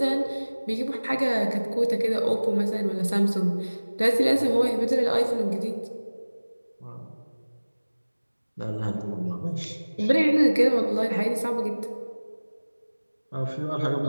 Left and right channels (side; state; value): both; inverted; correlation -1.00